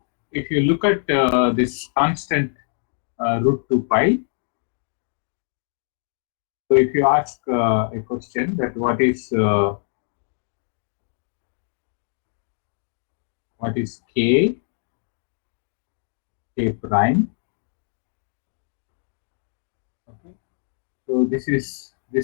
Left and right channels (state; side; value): silent; right; digital silence